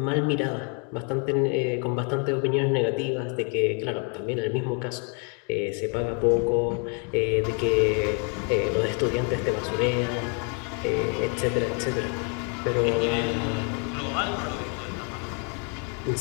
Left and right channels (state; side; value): quieter; right; 38.5 dB